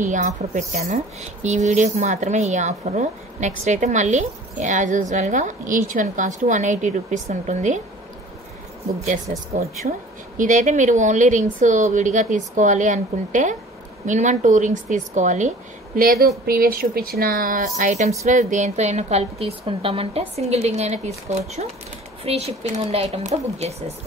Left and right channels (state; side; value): normal; both; correlation 0.47